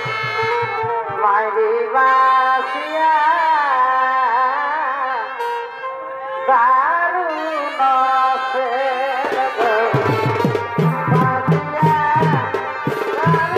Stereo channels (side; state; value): both; identical; correlation 1.00